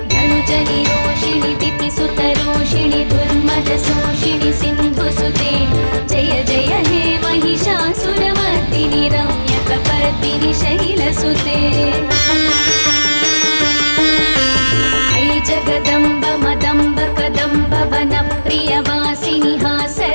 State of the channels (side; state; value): both; inverted; correlation -1.00